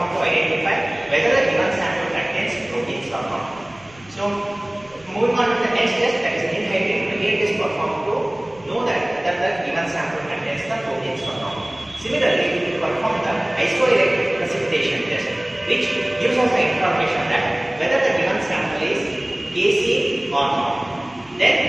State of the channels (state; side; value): noise; right; rumble, 27 dB below the sound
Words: to identify whether the given sample contains proteins or not. So, moving on to the next test, that is in-hydrate. Again, it is performed to know that whether the given sample contains the proteins or not. Similarly, we will perform the isoelectric precipitation test, which gives us the information that whether the given sample is gaseous or not.